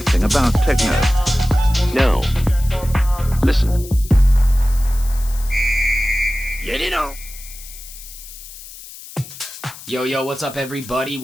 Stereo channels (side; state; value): left; noise; hiss, 16 dB below the sound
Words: about techno? No. Listen. Get it on. Yo, what's up, everybody?